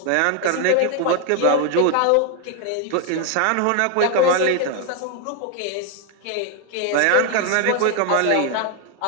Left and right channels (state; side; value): different; both; correlation 0.01